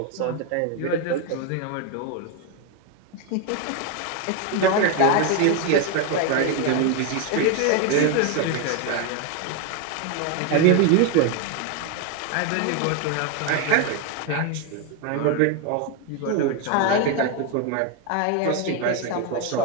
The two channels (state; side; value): different; both; correlation 0.01